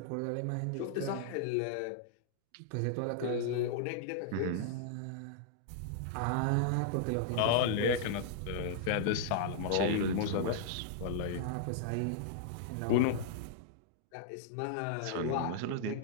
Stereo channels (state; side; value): different; both; correlation -0.01